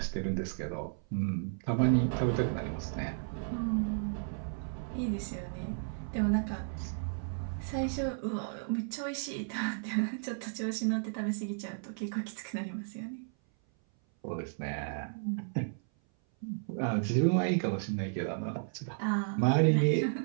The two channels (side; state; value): left; silent; 55 dB below the other